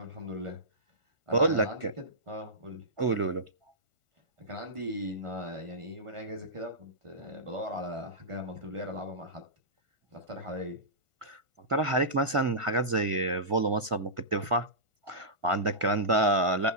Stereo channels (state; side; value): late; left; 1.5 ms